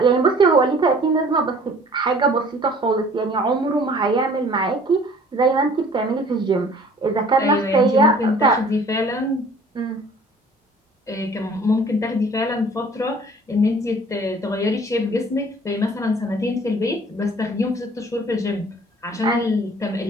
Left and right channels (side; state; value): both; normal; correlation 0.52